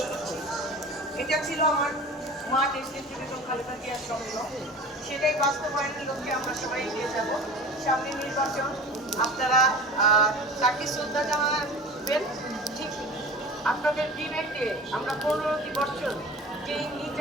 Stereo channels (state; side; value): normal; both; correlation 0.38